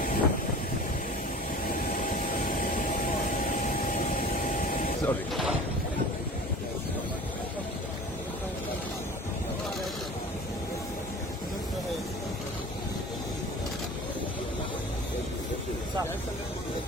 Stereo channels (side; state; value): both; normal; correlation 0.41